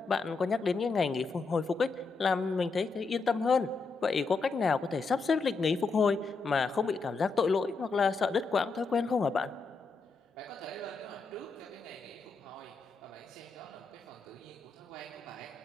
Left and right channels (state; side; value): quieter; right; 4.3 dB